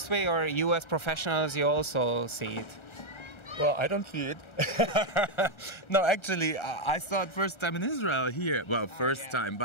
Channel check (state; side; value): late; right; 1.3 ms